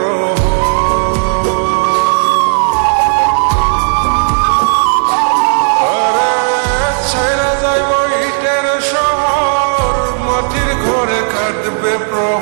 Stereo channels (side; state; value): left; silent; digital silence